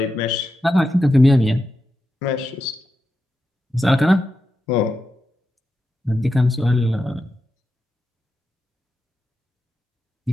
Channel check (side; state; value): both; normal; correlation 0.88